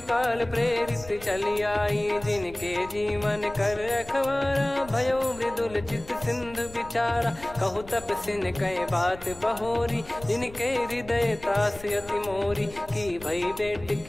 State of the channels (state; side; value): noise; left; rumble, 17 dB below the sound